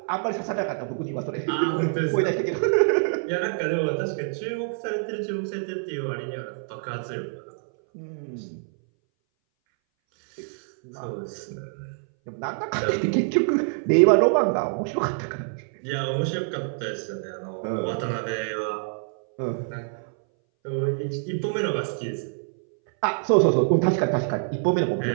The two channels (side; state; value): left; silent; 60 dB below the other